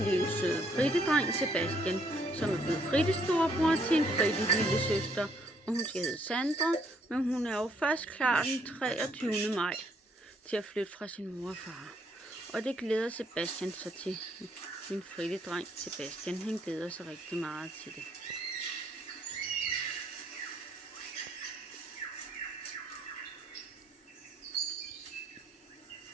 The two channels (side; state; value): both; normal; correlation 0.69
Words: lille søde frittedreng Sebastian, som er blevet frittestorebror til en fritte lille søster, og hun skal hedde Sandra, men hun er jo først klar den 23. maj til at flytte fra sin mor og far. Og det glæder Sebastian sig til. Min frittedreng Sebastian, han glæder sig rigtig meget til det.